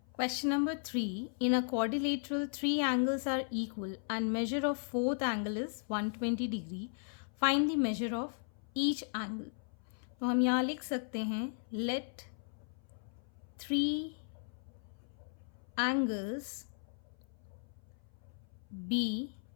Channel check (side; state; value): right; silent; 53 dB below the other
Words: Question number 3. In a quadrilateral, three angles are equal and measure of fourth angle is 120 degree. Find the measure of each angle. तो हम यहाँ लिख सकते हैं let three angles be